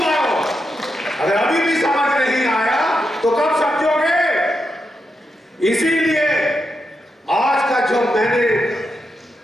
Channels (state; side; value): normal; both; correlation 0.85